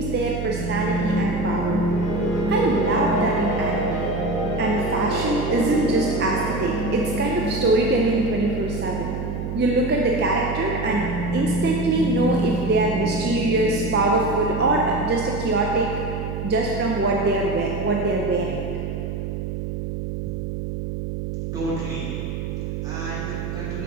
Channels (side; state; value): right; noise; hum, 5 dB below the sound